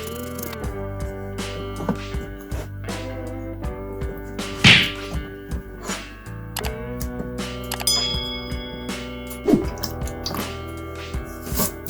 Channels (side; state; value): both; identical; correlation 1.00